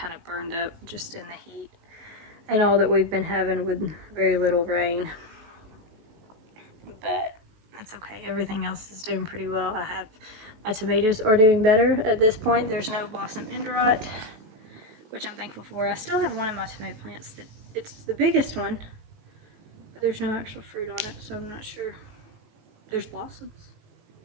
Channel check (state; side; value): late; left; 19 ms